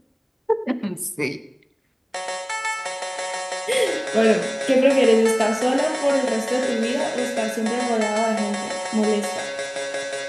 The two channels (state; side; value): identical; both; correlation 1.00